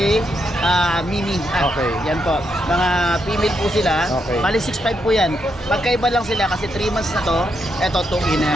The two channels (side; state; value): both; normal; correlation 0.80